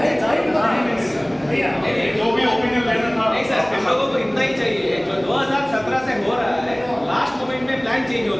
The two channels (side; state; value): right; noise; hum, 27 dB below the sound